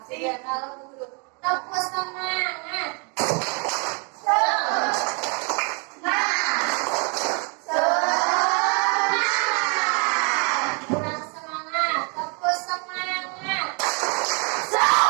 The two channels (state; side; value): quieter; left; 35.4 dB